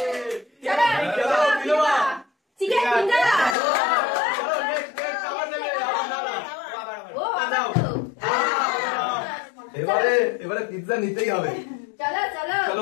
এবারে পিৎজা নিতেই হবে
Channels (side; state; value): right; drops out; at 3.6 s